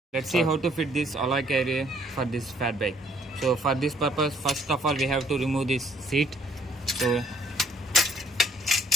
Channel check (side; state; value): both; normal; correlation 0.64